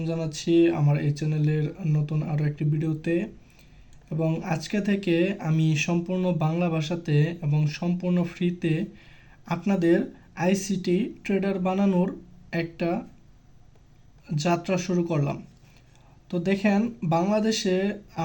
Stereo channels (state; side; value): identical; both; correlation 1.00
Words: জানাচ্ছি আমার এই চ্যানেলের নতুন আরও একটি ভিডিওতে। এবং আজকে থেকে আমি সম্পূর্ণ বাংলা ভাষাতে এবং সম্পূর্ণ ফ্রিতে আপনাদের আইসিটি ট্রেডার বানানোর একটা যাত্রা শুরু করলাম। তো দেখেন, বাংলাদেশে